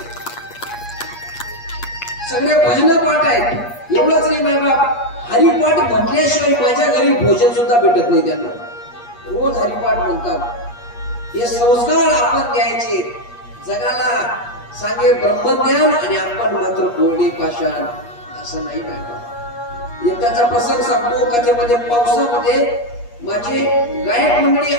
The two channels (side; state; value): right; late; 8.4 ms